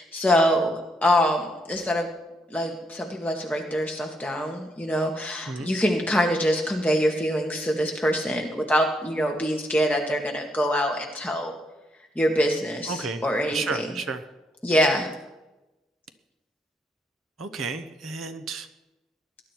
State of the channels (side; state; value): both; normal; correlation 0.75